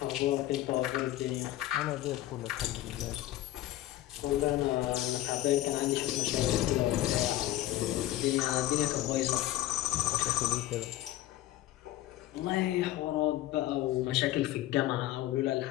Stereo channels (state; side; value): quieter; right; 14.8 dB